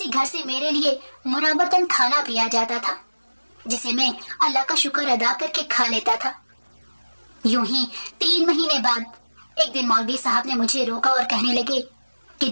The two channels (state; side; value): inverted; both; correlation -1.00